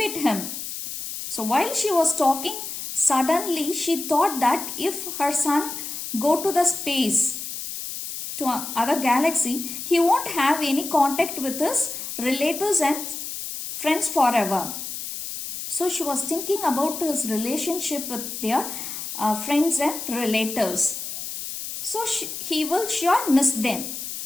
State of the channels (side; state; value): left; noise; hiss, 7 dB below the sound